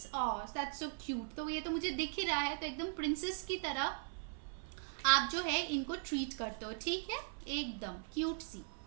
that's so cute. तो ये तो मुझे दिख ही रहा है, तो एकदम प्रिंसेस की तरह आप जो है इनको ट्रीट करते हो, ठीक है, एकदम क्यूट सी।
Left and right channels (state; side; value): silent; left; 51 dB below the other